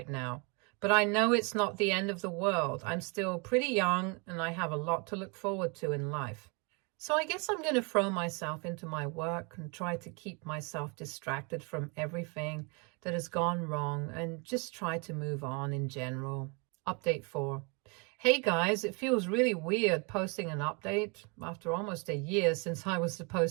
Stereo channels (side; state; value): left; quieter; 32.2 dB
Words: now, but I know it's not the end of the world. I'm still pretty young and I have a lot to look forward to in life. So I guess I'm going to throw myself into my work and try to keep myself distracted from everything that has gone wrong and just try to move on in general. Update 4. Hey guys, it feels really weird posting an update after almost a year since I was